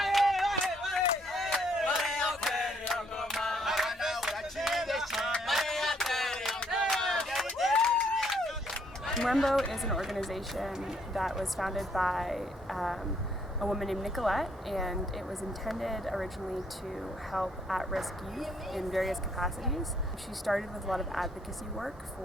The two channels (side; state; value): both; normal; correlation 0.68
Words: Rainbow is an organization that was founded by a woman named Nicolette, and it was intended originally to help at-risk youth in various capacities. She started with a lot of advocacy work